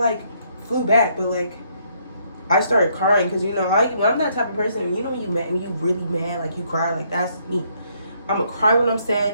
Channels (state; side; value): inverted; both; correlation -0.69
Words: flew back, but, like, I started crying because, you know, I'm that type of person. You know, when you really mad, like, you cry, like, that's me. I'm gonna cry when I'm